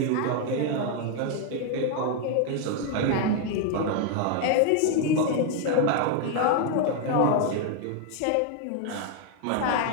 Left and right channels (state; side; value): different; both; correlation 0.01